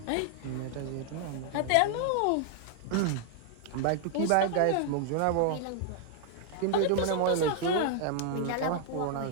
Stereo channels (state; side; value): different; both; correlation -0.01